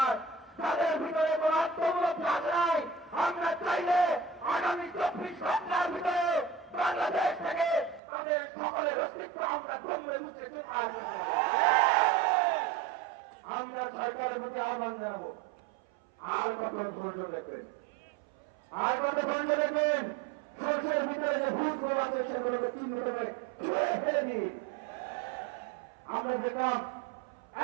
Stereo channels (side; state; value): left; drops out; at 8.0 s